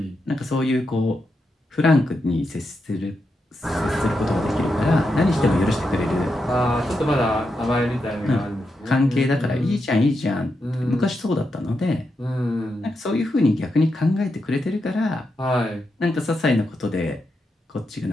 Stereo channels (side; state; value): both; normal; correlation 0.85